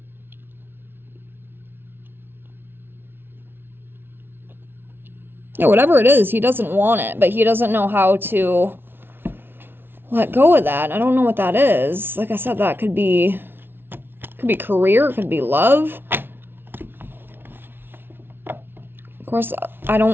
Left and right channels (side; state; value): left; late; 0.11 ms